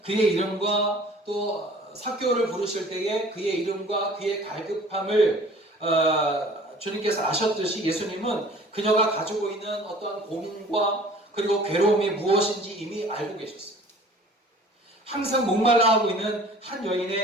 그의 이름과 또 삭개오를 부르실 때에 그의 이름과 그의 갈급함을 주님께서 아셨듯이 예수님은 그녀가 가지고 있는 어떠한 고민과 그리고 괴로움이 무엇인지 이미 알고 계셨어요. 항상 목말라 하고 있는 한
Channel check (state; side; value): normal; both; correlation 0.48